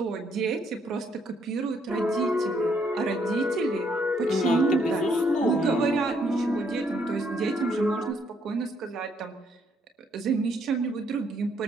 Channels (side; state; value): both; normal; correlation 0.71